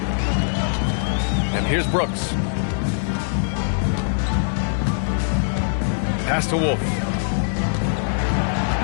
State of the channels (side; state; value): right; silent; 64 dB below the other